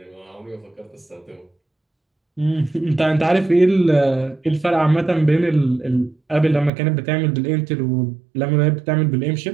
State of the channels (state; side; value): drops out; left; at 6.7 s